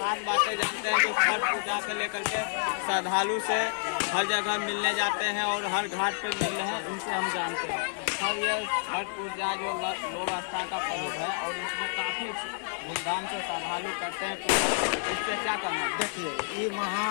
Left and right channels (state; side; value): silent; right; digital silence